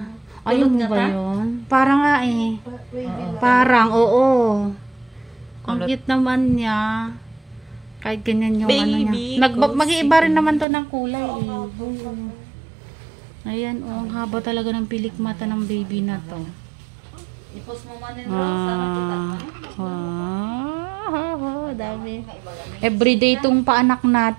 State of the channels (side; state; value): left; drops out; at 10.7 s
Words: Ayun mo ba yun? Parang nga eh. Parang, oo. Ang cute naman niya. Kahit ganyan yung ano niya. Mag-iiba rin naman to ng kulay eh. Ayan oh, ang haba talaga ng pilik mata ng baby na to. I-post mo man yung Rose. Dami. Everyday itong paanak